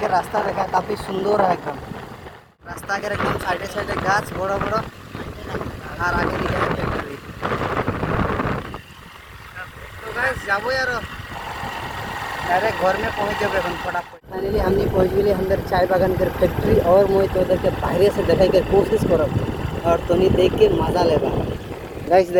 रास्ता देखा काफ़ी सुंदर है एकदम रास्ता के एकदम साइडे साइडे गाछ बड़ा बड़ा और आगे दिखे है फैक्ट्री। तो गाइस जाबो यार डायरेक्ट घर में पहुँच जाबे फटाफट। फाइनली हमने पहुँच गए अंदर चाय बागान के फैक्ट्री और मुझे तो उधर के बाहर से देखा के कोशिश करब और तनी देख के मजा लेबा। गाइस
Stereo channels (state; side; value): identical; both; correlation 1.00